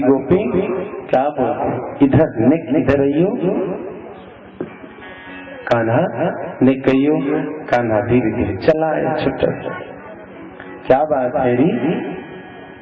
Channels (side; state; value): both; identical; correlation 1.00